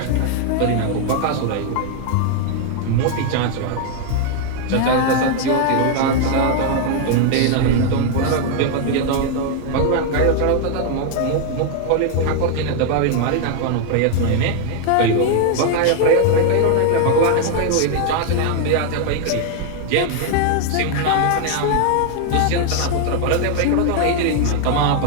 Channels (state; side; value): different; both; correlation 0.00